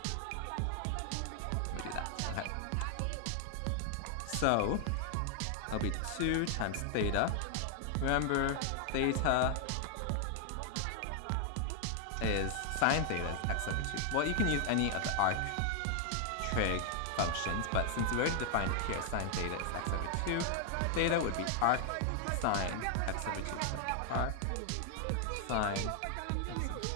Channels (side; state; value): both; different; correlation 0.00